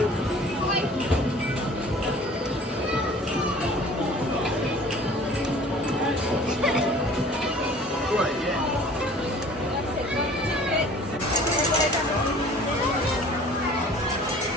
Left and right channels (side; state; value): both; normal; correlation 0.48